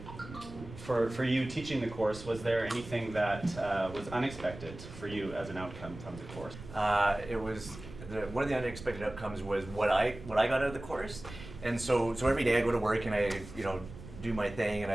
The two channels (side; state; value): right; noise; rumble, 14 dB below the sound